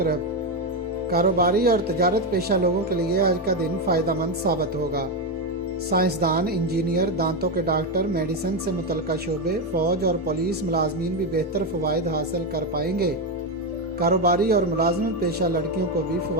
कारोबारी और तजारत पेशा लोगों के लिए आज का दिन फ़ायदेमंद साबित होगा। साइंसदान, इंजीनियर, दांतों के डॉक्टर, मेडिसिन से मुतल्लिका शोबे, फ़ौज और पुलिस मुलाजमीन भी बेहतर फ़वाइद हासिल कर पाएंगे। कारोबारी और मुलाजमत पेशा लड़कियों को भी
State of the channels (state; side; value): normal; both; correlation 0.09